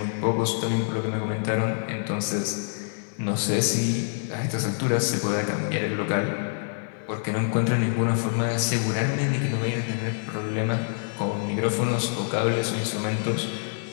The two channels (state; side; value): silent; right; 60 dB below the other